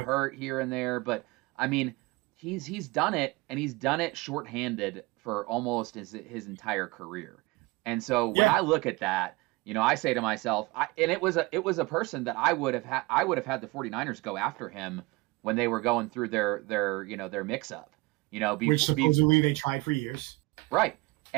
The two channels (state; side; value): quieter; left; 23.7 dB